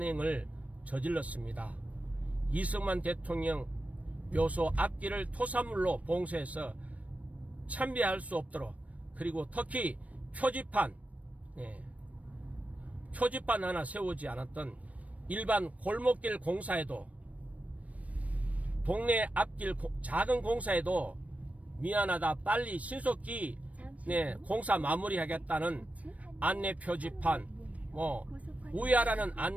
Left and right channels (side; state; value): left; late; 0.067 ms